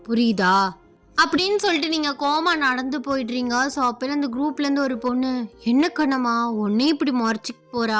புரியுதா? அப்படின்னு சொல்லிட்டு நீங்கள் கோமா நடந்து போயிடுறீங்க. ஸோ அப்போ அந்த குரூப்லேருந்து ஒரு பொண்ணு, என்ன கண்ணம்மா ஒன்னே இப்படி முறைச்சிக்கு போகிறா?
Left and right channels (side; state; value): both; identical; correlation 1.00